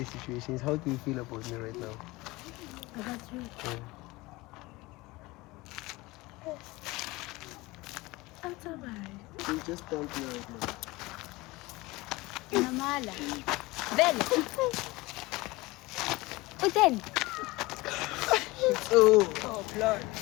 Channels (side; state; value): right; quieter; 21.4 dB